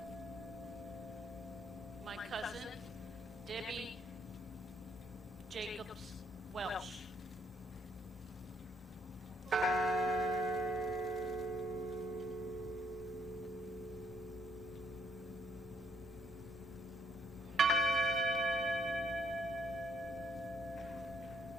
My cousin, Debbie Jacobs Welsh.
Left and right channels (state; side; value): normal; both; correlation 0.70